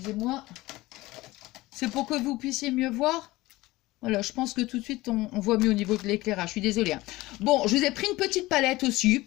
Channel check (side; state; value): right; quieter; 19.1 dB